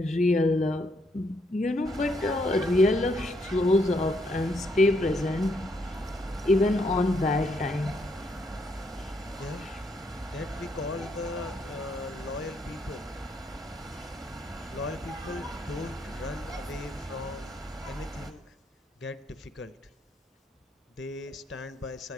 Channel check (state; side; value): normal; both; correlation 0.74